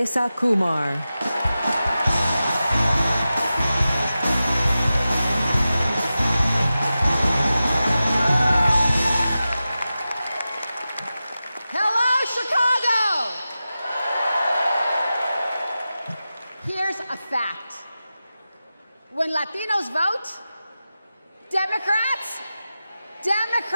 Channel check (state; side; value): inverted; both; correlation -0.93